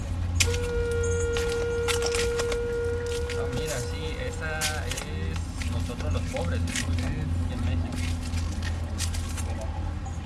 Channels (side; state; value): both; identical; correlation 1.00